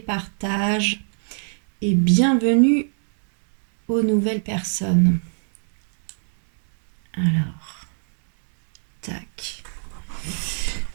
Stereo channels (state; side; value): silent; left; digital silence